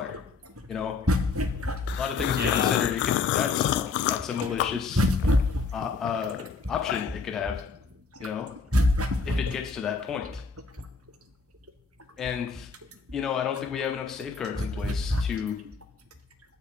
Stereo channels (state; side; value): quieter; right; 4.4 dB